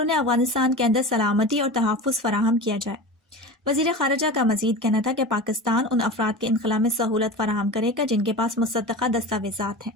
افغانستان کے اندر سلامتی اور تحفظ فراہم کیا جائے۔ وزیر خارجہ کا مزید کہنا تھا کہ پاکستان ان افراد کے انخلاء میں سہولت فراہم کرے گا جن کے پاس مصدقہ دستاویزات ہیں۔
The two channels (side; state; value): both; normal; correlation 0.31